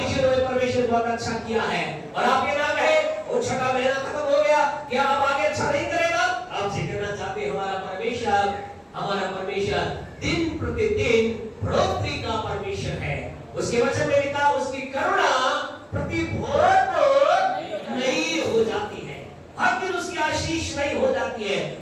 जीवन में परमेश्वर बहुत अच्छा किया है। और आप ये ना कहे वो छठा महीना खत्म हो गया, क्या आप आगे अच्छा नहीं करेगा? आपसे कहना चाहते हैं हमारा परमेश्वर दिन प्रतिदिन बढ़ोतरी का परमेश्वर है। उसके वचन में लिखा उसकी करुणा प्रति भोर नहीं हो जाती है, हर दिन उसकी आशीष नहीं हो जाती है,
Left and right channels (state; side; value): identical; both; correlation 1.00